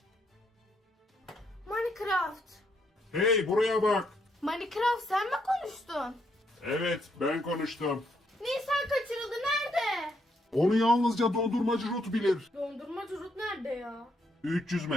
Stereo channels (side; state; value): both; normal; correlation 0.75